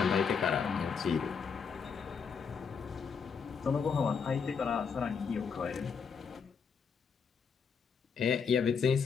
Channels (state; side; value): quieter; right; 6.1 dB